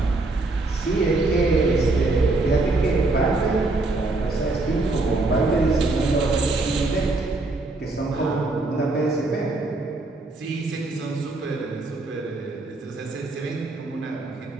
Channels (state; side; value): quieter; left; 3.2 dB